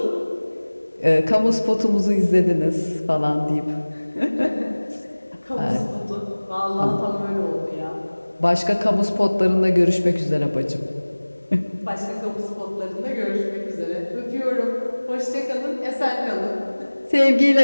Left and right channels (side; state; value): both; inverted; correlation -1.00